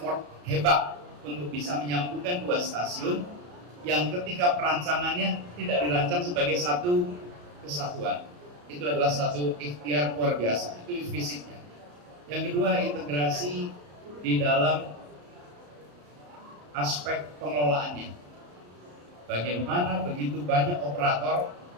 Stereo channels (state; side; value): late; left; 34 ms